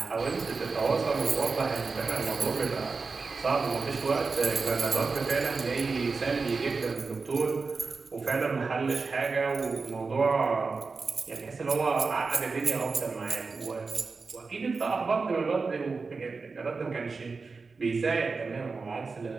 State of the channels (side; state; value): left; quieter; 4.4 dB